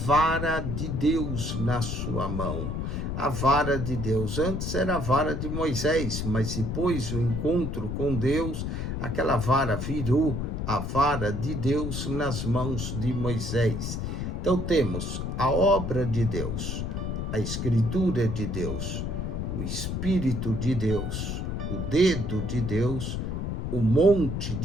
de Deus na sua mão. A vara de Deus. Antes era a vara de Moisés, mas depois o encontro com Deus, aquela vara virou a vara de Deus nas mãos de Moisés. Então temos a obra de Deus, a escritura de Deus, o Espírito de Deus, o dedo de Deus, o monte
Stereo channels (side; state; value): left; noise; rumble, 3 dB below the sound